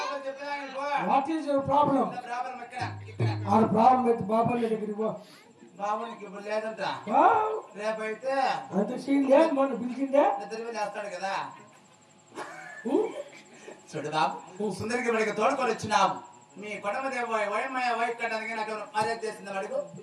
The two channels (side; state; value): both; identical; correlation 1.00